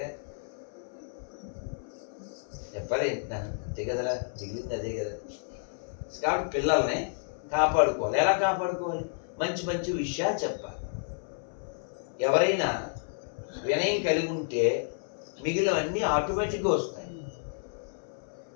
చెప్పాలి అంతే కదరా, మిగిలింది అదే కదా. కాబట్టి పిల్లల్ని కాపాడుకోవాలి. ఎలా కాపాడుకోవాలి? మంచి మంచి విషయాలు చెప్పాలి. ఎవరైనా వినయం కలిగి ఉంటే మిగిలినవన్నీ ఆటోమేటిక్గా వస్తాయి.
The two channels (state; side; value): silent; right; 57 dB below the other